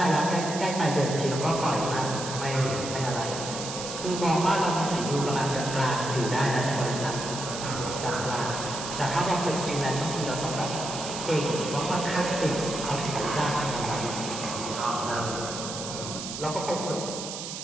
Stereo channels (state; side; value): noise; right; hiss, 7 dB below the sound